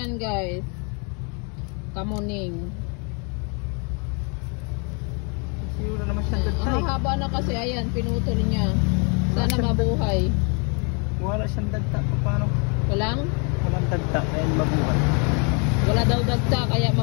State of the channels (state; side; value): quieter; right; 35.5 dB